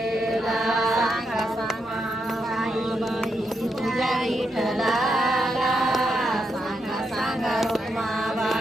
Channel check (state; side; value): normal; both; correlation 0.82